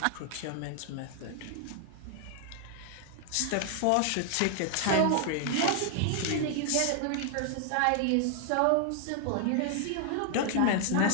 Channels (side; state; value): both; different; correlation 0.00